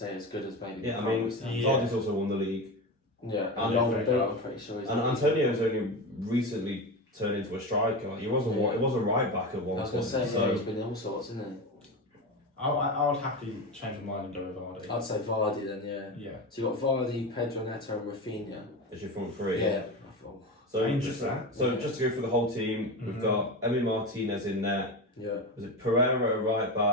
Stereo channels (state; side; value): normal; both; correlation 0.22